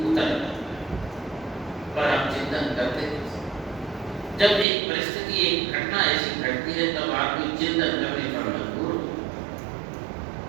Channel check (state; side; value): drops out; left; at 4.7 s